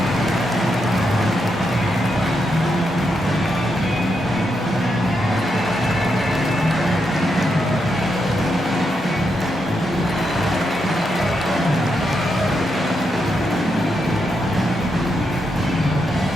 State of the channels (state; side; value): normal; both; correlation 0.82